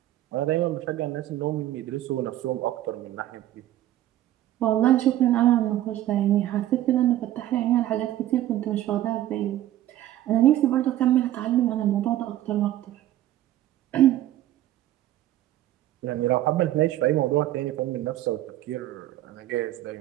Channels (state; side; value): quieter; left; 13.6 dB